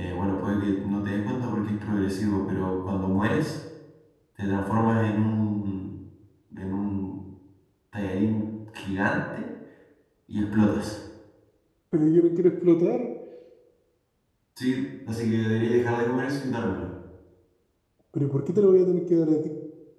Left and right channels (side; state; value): both; identical; correlation 1.00